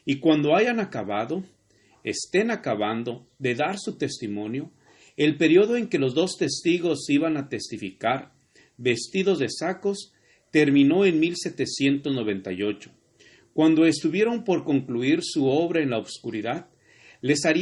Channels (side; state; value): both; identical; correlation 1.00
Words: Y cuando estén acabando de dar su testimonio, el periodo en que los dos testigos iban a testificar, vestidos de sacos, terminó en 1798. Cuando estuvieron por concluir su obra en la oscuridad, les